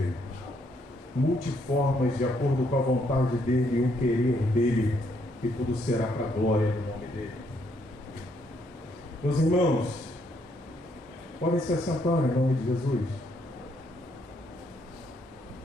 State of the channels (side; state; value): both; normal; correlation 0.72